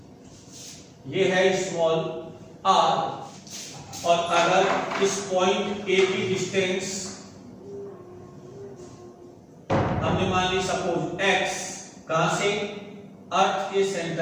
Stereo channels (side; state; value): both; identical; correlation 1.00